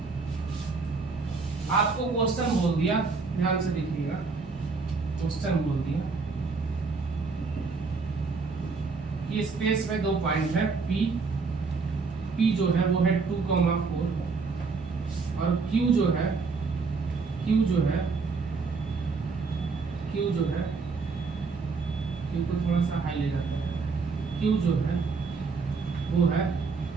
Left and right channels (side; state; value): left; quieter; 4.6 dB